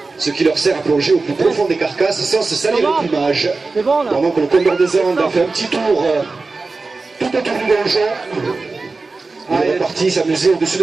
ce qui leur sert à plonger au plus profond des carcasses sans se salir le plumage. Pendant que le condor des Andes a fait un petit tour tout autour du donjon, il est reparti s'amuser au-dessus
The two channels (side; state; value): left; quieter; 3.8 dB